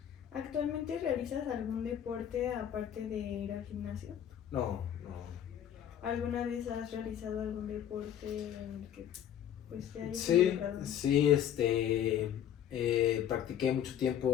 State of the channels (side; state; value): right; quieter; 10.1 dB